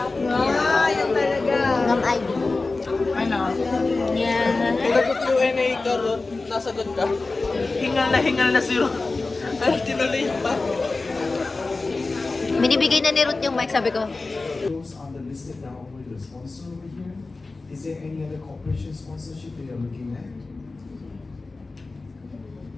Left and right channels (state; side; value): quieter; right; 3.6 dB